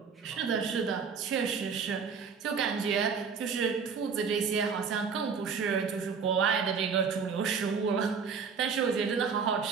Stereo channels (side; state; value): left; quieter; 5.9 dB